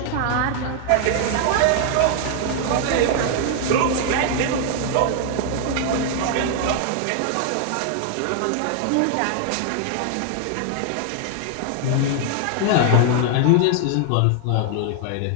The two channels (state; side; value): different; both; correlation 0.00